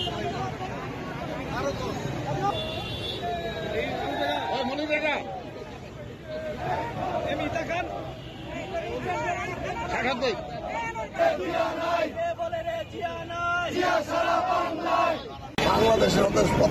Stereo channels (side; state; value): both; identical; correlation 1.00